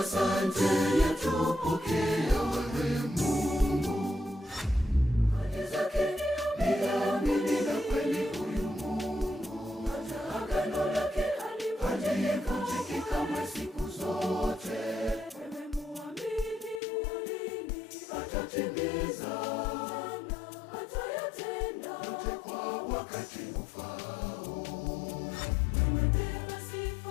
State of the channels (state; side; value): drops out; right; at 16.8 s